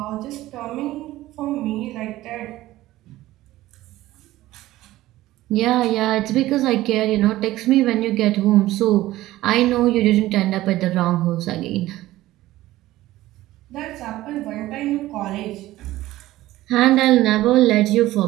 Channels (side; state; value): left; quieter; 16.2 dB